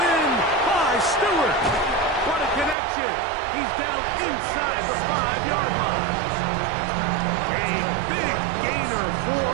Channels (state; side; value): drops out; left; at 2.8 s